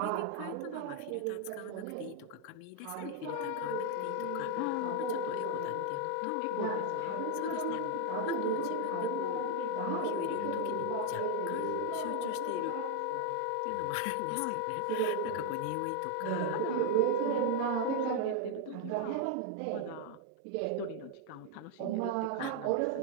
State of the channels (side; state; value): both; different; correlation 0.01